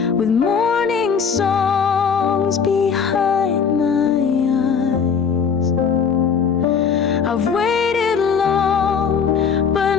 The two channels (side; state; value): right; quieter; 6.5 dB